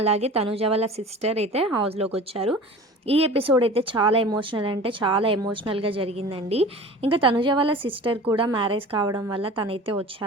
తనుజ వాళ్ళ సిస్టర్ అయితే హౌస్లోకి వచ్చారు. ఈ ఎపిసోడ్ అయితే చాలా ఎమోషనల్ అంటే చాలా ఎమోషనల్గా జరిగిందండి. ఇంకా తనుజ వాళ్ళ సిస్టర్ కూడా మ్యారేజ్ కావడం వల్ల తనైతే వచ్చా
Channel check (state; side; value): normal; both; correlation 0.39